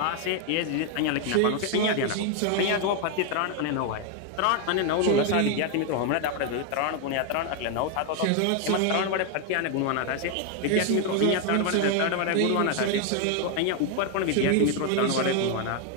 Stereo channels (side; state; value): both; different; correlation 0.01